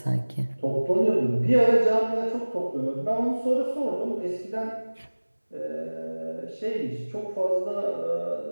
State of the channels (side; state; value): both; inverted; correlation -1.00